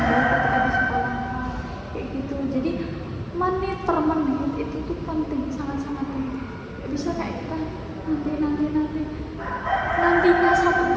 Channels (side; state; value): both; identical; correlation 1.00